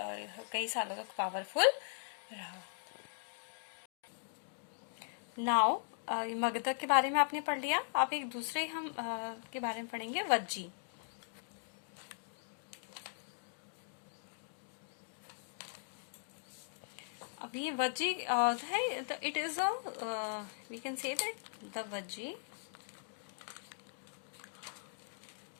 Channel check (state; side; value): silent; right; digital silence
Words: कई सालों तक पावरफुल रहा। नाउ मगधा के बारे में आपने पढ़ लिया, आप एक दूसरे हम के बारे में पढ़ेंगे, वज्जी। अब ये वज्जी है, it is we can say that the Vajji